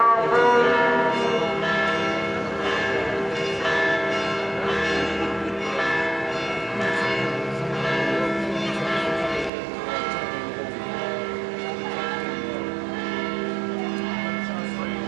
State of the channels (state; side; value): drops out; left; at 9.5 s